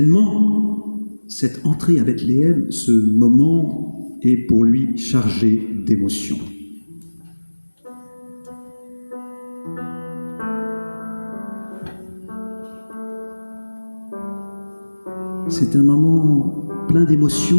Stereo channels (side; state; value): both; inverted; correlation -1.00